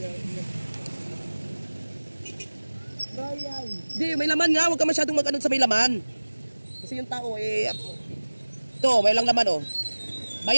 Bayan. Hindi, may laman nga. Huwag ka masyadong mag-ano sa may laman. Kasi yung tao ito, may lang laman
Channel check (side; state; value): both; inverted; correlation -1.00